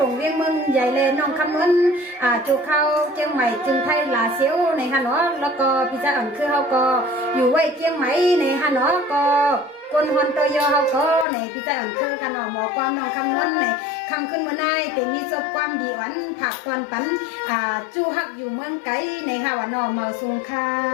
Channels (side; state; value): right; drops out; at 11.2 s